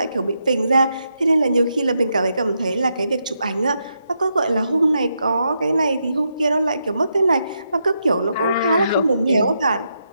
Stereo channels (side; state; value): both; inverted; correlation -0.82